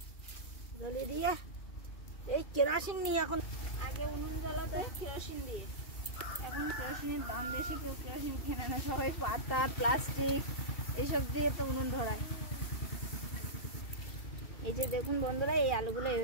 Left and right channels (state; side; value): late; right; 2.7 ms